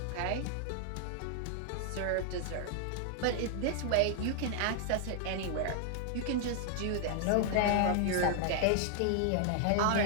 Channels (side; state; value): both; different; correlation 0.00